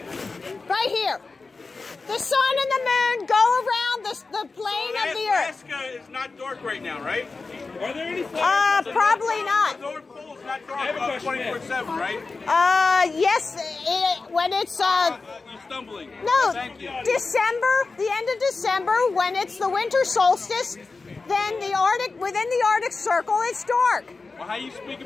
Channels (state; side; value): quieter; right; 4.0 dB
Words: Right here. The sun and the moon go around the plane of the Earth. Alaska is not dark right now, right? Are there any flares? Probably not. The North Pole is not dark 24/7, right? Yes, when it's you're stumbling. No, Thank you. December, the end of December, when it's the winter solstice, then within the Arctic Circle, it's dark. Well, how are you